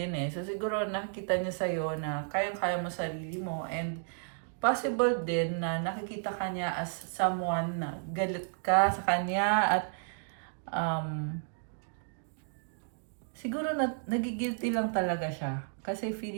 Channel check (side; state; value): left; silent; digital silence